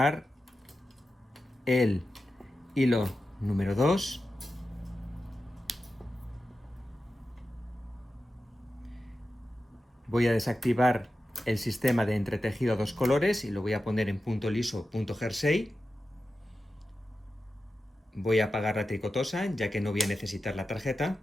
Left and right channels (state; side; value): normal; both; correlation 0.92